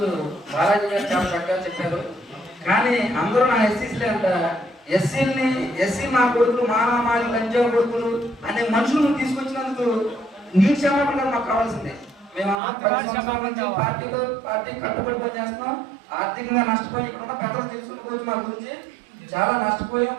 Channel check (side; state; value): left; drops out; at 12.6 s